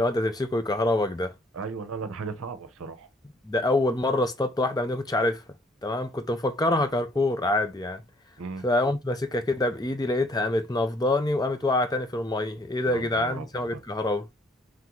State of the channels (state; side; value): normal; both; correlation 0.62